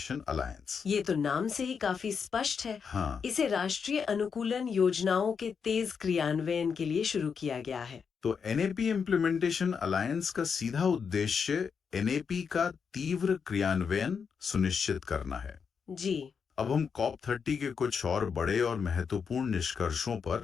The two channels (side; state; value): right; quieter; 6.2 dB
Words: अलायंस। ये तो नाम से ही काफी स्पष्ट है। हाँ, इसे राष्ट्रीय अनुकूलन योजनाओं के तेज क्रियान्वयन के लिए शुरू किया गया है। तो NAP इम्प्लीमेंटेशन अलायंस का सीधा उद्देश्य NAP का तीव्र क्रियान्वयन सुनिश्चित करना है। जी अब हम कॉप 30 के कुछ और बड़े और महत्वपूर्ण निष्कर्षों